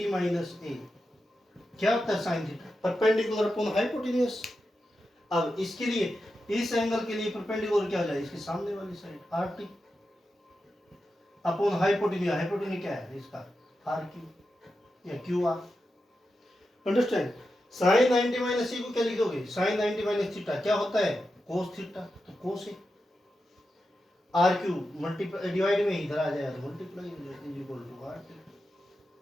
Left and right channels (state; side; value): normal; both; correlation 0.89